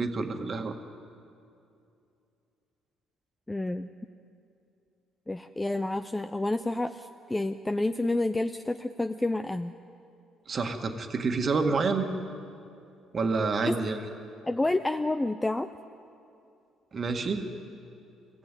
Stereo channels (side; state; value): both; normal; correlation 0.88